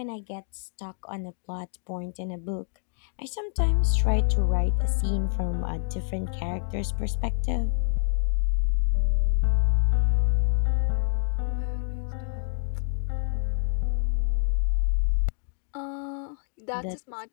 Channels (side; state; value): right; silent; digital silence